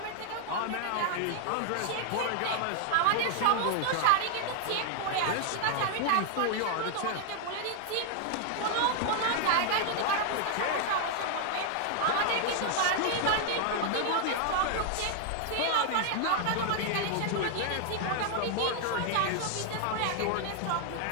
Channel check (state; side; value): different; both; correlation 0.00